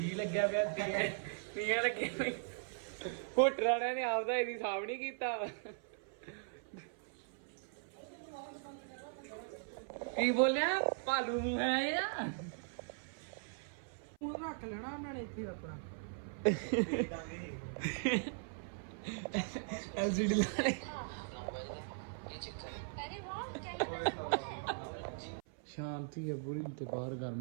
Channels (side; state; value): left; silent; 52 dB below the other